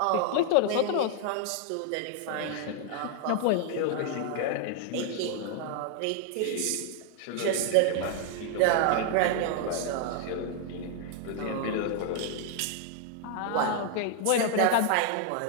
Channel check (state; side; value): different; both; correlation 0.00